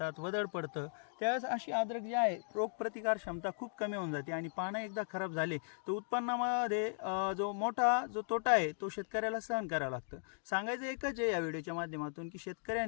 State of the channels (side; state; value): right; silent; digital silence